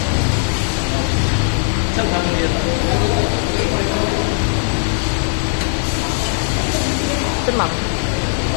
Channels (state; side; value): silent; right; digital silence